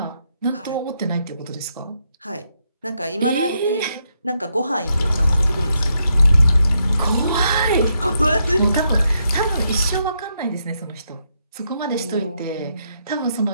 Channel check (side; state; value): both; inverted; correlation -0.79